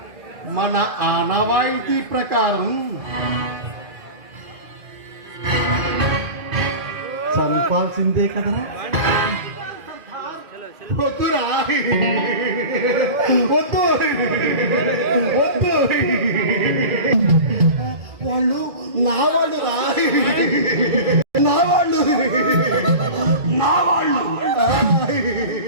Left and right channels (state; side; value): late; left; 2.4 ms